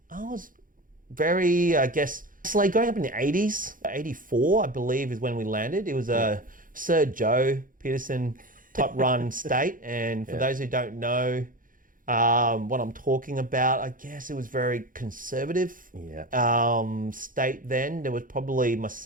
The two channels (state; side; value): late; left; 0.40 ms